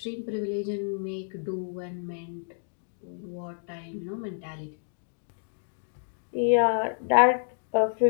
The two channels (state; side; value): silent; right; digital silence